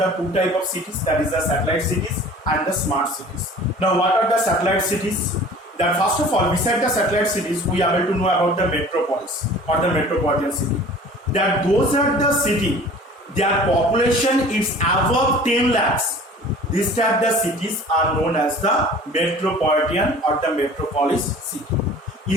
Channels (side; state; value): both; normal; correlation 0.45